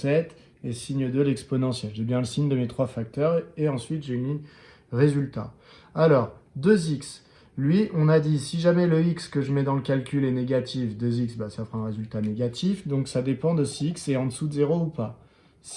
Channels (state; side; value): identical; both; correlation 1.00